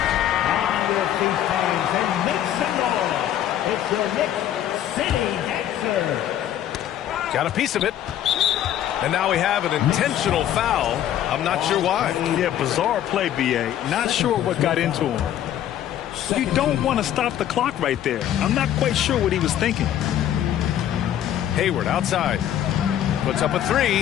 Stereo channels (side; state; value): right; quieter; 11.3 dB